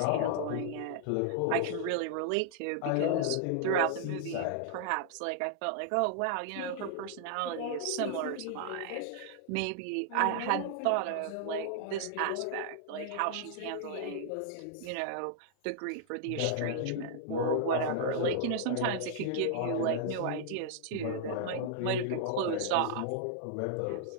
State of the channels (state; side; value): different; both; correlation -0.01